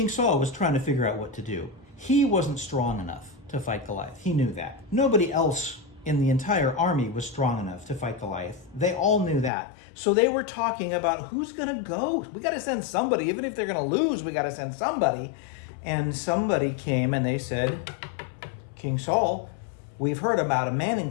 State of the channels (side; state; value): right; drops out; at 9.5 s